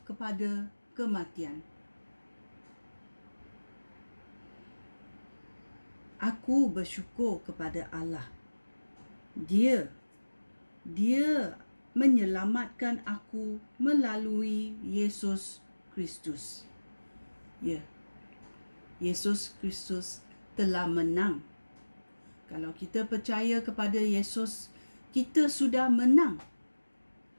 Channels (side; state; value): both; inverted; correlation -1.00